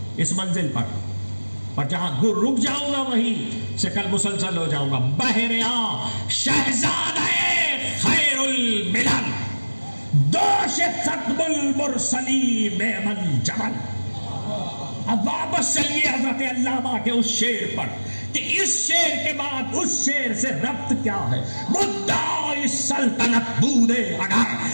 اس منزل پر جہاں رک جاؤں گا وہیں سے کل مسلسل ہو جاؤں گا. بہریا شہزادہ خیر الملل دوش ختم المرسلین من جمل. اب واپس چلیے حضرت علامہ کے اس شعر پر کہ اس شعر کے بعد اس شعر سے ربط کیا ہے. مدعی سلطنت بودے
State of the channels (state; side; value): inverted; both; correlation -1.00